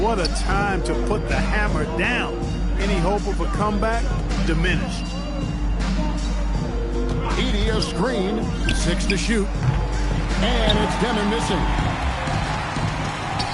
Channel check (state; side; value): identical; both; correlation 1.00